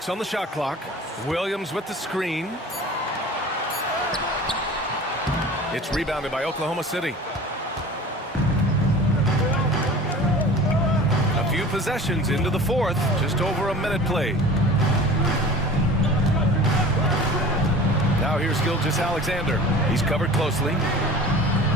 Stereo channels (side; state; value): both; normal; correlation 0.40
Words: on the shot clock. Williams with the screen. It's rebounded by Oklahoma City. A few possessions into the fourth. Just over a minute played. Now here's Gilgeous-Alexander. He's covered closely.